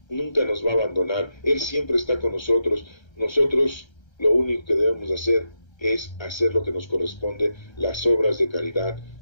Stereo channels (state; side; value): late; right; 1.3 ms